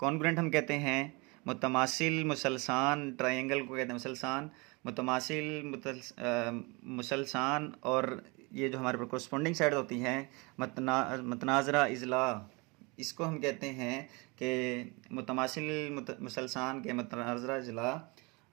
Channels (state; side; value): quieter; left; 27.6 dB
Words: हम कहते हैं मुतमासिल मुसलसान, ट्रायंगल को कहते हैं मुसलसान, मुतमासिल मुसलसान, और ये जो हमारे पर कोरस्पॉन्डिंग साइड होती हैं मतनाज़रा इज़ला, इसको हम कहते हैं कि मुतमासिल मुसलसान के मतनाज़रा इज़ला,